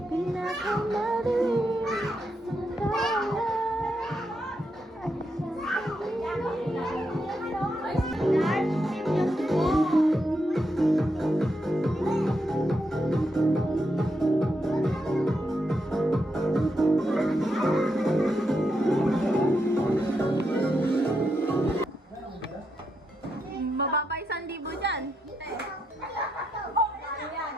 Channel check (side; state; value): both; normal; correlation 0.82